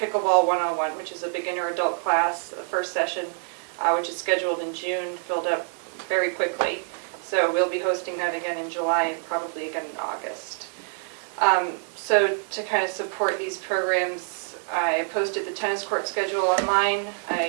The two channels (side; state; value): left; silent; 61 dB below the other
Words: 101, which is a beginner adult class, the first session, which is scheduled in June, filled up very quickly. So we'll be hosting that again in July and probably again in August. So to kind of support these programs, I posted the tennis court schedule online.